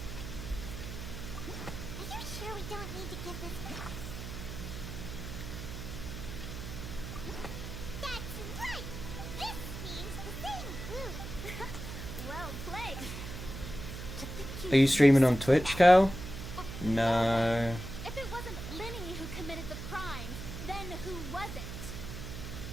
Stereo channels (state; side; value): noise; right; hum, 8 dB below the sound